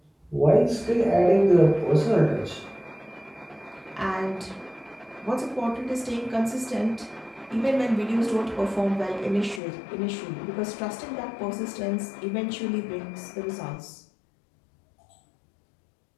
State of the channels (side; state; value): right; drops out; at 9.6 s